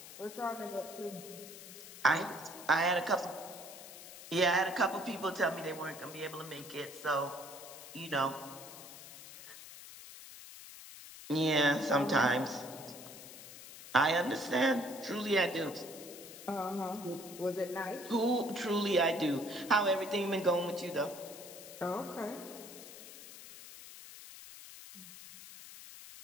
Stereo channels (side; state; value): left; noise; hiss, 14 dB below the sound